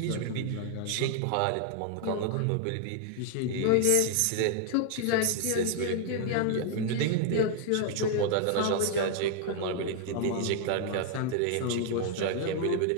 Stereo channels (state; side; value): different; both; correlation 0.00